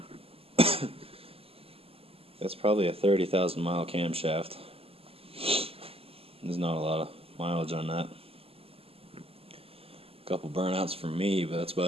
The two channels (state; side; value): late; left; 0.28 ms